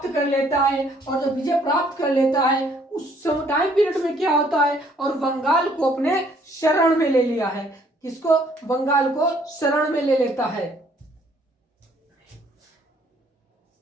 कर लेता है, और जब विजय प्राप्त कर लेता है उस टाइम पीरियड में क्या होता है, और बंगाल को अपने शरण में ले लिया है। किसको? बंगाल को शरण में ले लेता है।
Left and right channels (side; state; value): both; normal; correlation 0.63